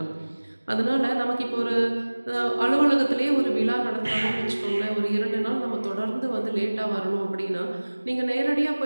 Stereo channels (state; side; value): inverted; both; correlation -1.00